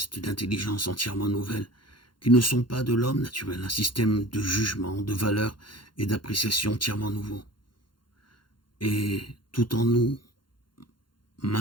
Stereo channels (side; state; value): right; late; 0.72 ms